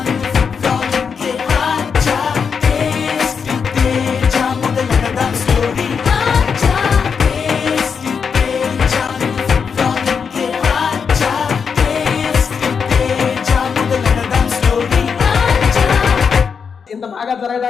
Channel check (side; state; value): right; quieter; 6.2 dB